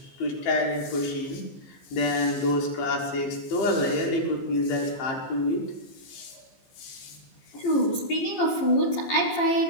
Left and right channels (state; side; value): late; right; 15 ms